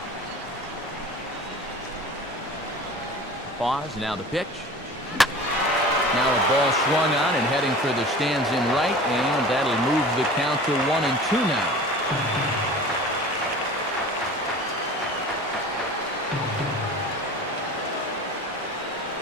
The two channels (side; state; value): both; normal; correlation 0.39